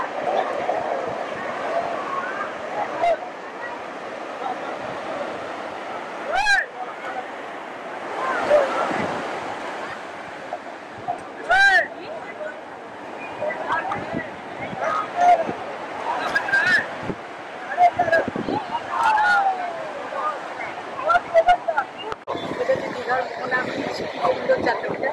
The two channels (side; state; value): both; identical; correlation 1.00